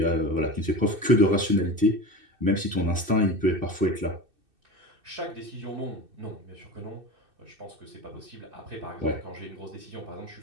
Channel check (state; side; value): late; left; 2.6 ms